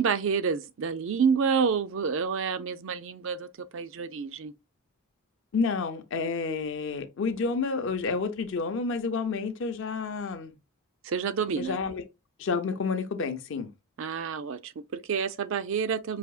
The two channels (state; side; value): normal; both; correlation 0.09